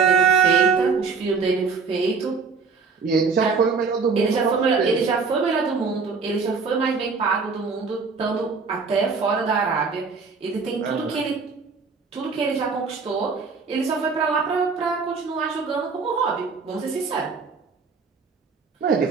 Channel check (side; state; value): left; quieter; 5.0 dB